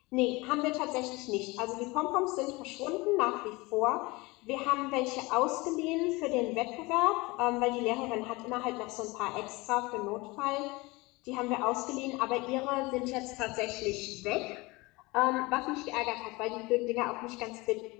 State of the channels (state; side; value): quieter; right; 23.3 dB